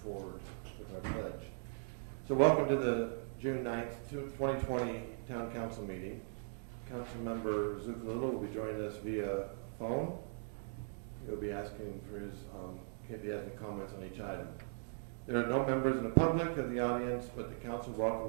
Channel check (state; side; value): silent; left; digital silence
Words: forward with our pledge. So welcome to the June 9th, 2020 Town Council meeting. Councilmember Zuccolillo will be joining us via phone. He'll be asking for his, if he has any comments on each item. There are no members in the public of the audience, but the council